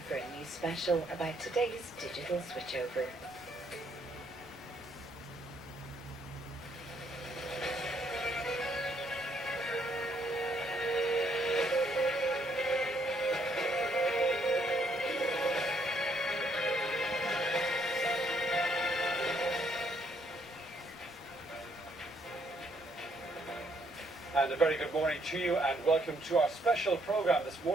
for a news special about today's digital switchover. And a very good morning to you and welcome to our special programme this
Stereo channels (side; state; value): both; normal; correlation 0.70